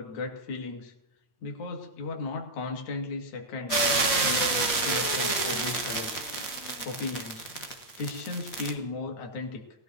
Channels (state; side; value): late; right; 8.8 ms